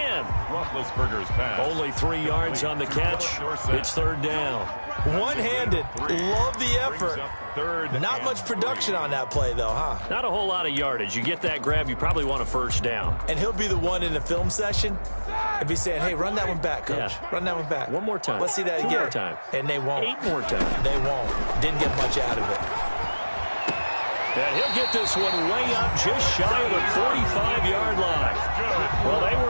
Roethlisberger's pass. Only 3 yards on the catch. It's 3rd down. One-handed. Love the effort. Not much production on that play, though, huh? Not a whole lot of yardage. You get that grab, you probably want a first down. And he'll be the one in the film session and be saying, hey, run that one back, coach. Yeah. Run that one back. One more time. Let's see that again. 2 more time. And they won't. 8 more times. They won't. Didn't get much out of it. And he'll get this one way up just shy of the 45-yard line. Well, they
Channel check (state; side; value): inverted; both; correlation -1.00